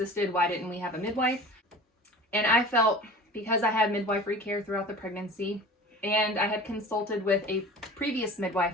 Why didn't we have a midwife? And I felt because I had midwifery care throughout the pregnancy, and I had consulted with a previous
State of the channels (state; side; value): normal; both; correlation 0.39